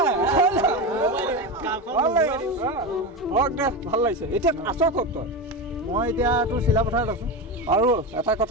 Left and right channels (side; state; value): both; normal; correlation 0.19